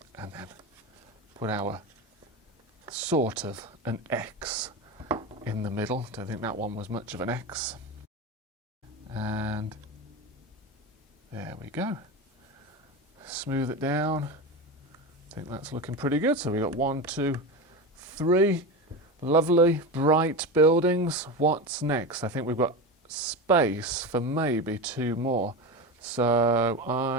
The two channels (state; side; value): normal; both; correlation 0.22